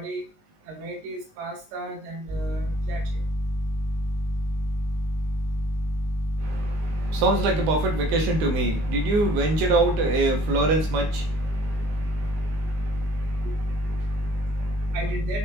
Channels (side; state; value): left; late; 19 ms